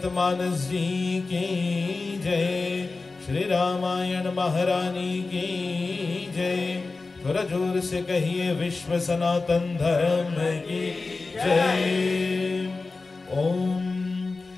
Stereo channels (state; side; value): quieter; right; 3.8 dB